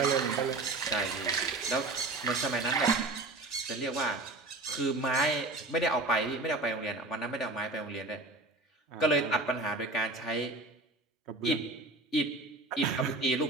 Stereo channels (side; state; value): left; quieter; 3.0 dB